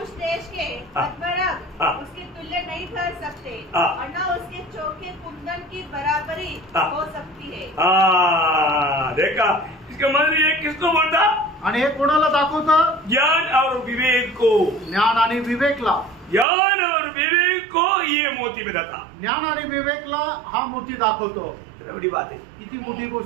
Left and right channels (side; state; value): left; drops out; at 16.4 s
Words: देश के पद्मराग उसके तुल्य नहीं ठहर सकते और न उसके चौके कुंदन की बराबरी हो सकती है। देखा, इसका मतलब ये किसको बोलता, आणि हे कोणाला दाखवतं, ज्ञान और विवेक को। ज्ञान आणि विवेकला। ज्ञान और विवेक को ये मोती बताता। ज्ञान आणि विवेकला हा मोती दाखवतो. कितना बड़ी बात है। किती मोठी